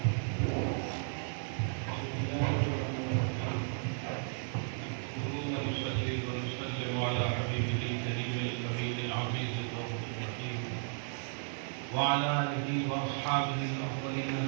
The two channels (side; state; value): left; silent; 55 dB below the other